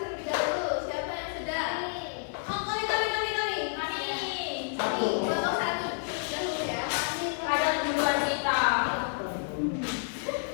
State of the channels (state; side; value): silent; right; 58 dB below the other